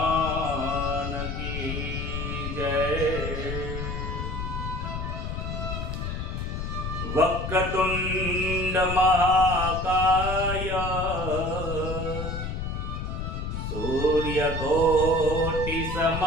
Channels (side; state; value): left; noise; rumble, 4 dB below the sound